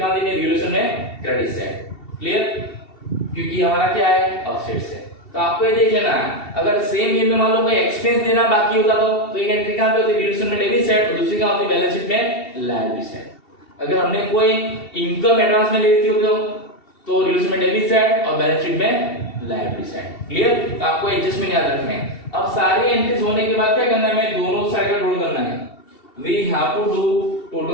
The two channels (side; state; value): right; late; 2.7 ms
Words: देनी है, रिलेशन में क्रेडिट साइड। क्लियर, क्योंकि हमारा क्या है, असेट्स है। तो आपको ये देख लेना है, अगर सेम ये में मान लो कोई एक्सपेंस देना बाकी होता तो एक एंट्री कहां पे होती, रिलेशन में डेबिट साइड, और दूसरी कहां होती, बैलेंस शीट में लायबिलिटी साइड। अगर हमने कोई इनकम एडवांस में ले ली होती तो रिलेशन में डेबिट साइड और बैलेंस शीट में लायबिलिटी साइड। क्लियर, तो आपको एडजस्टमेंट याद रखना है। अब सारी एंट्रीज होने के बाद क्या करना है, हमें दोनों साइड का टोटल करना है, we have to do